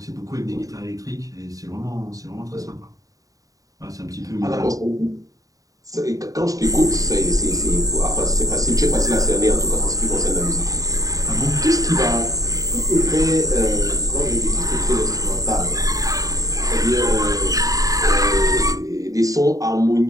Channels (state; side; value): late; left; 0.17 ms